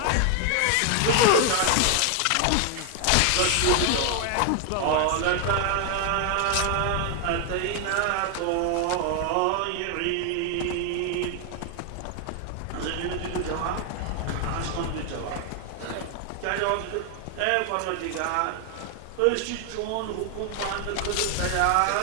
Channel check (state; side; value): different; both; correlation 0.00